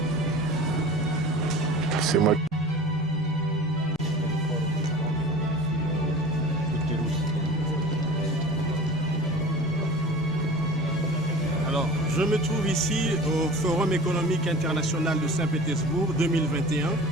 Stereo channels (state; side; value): normal; both; correlation 0.39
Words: C'est moi. Alors, je me trouve ici au Forum économique international de Saint-Pétersbourg 2021,